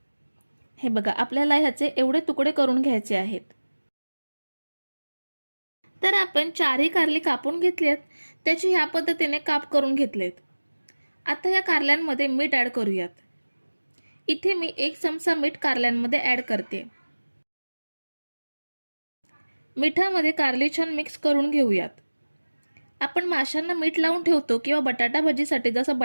हे बघा, आपल्याला ह्याचे एवढे तुकडे करून घ्यायचे आहेत. तर आपण 4ही कारली कापून घेतली आहेत. त्याची ह्या पद्धतीने काप करून घेतलेत. आता या कारल्यांमध्ये मीठ ॲड करूयात. इथे मी 1 चमचा मीठ कारल्यांमध्ये ॲड करते. मिठामध्ये कारली छान मिक्स करून घेऊयात. आपण माशांना मीठ लावून ठेवतो किंवा बटाटा भजीसाठी जसं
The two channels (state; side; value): inverted; both; correlation -1.00